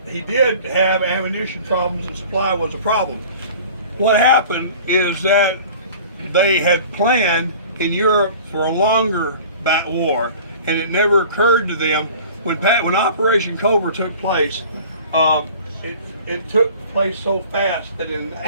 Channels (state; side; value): inverted; both; correlation -0.44